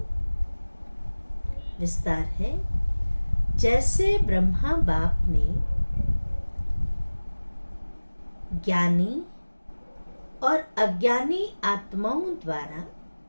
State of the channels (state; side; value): inverted; both; correlation -1.00